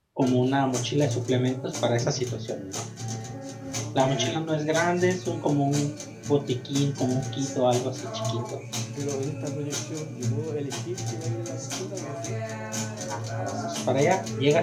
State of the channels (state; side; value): identical; both; correlation 1.00